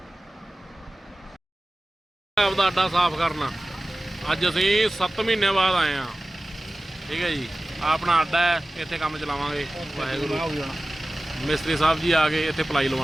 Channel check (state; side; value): normal; both; correlation 0.96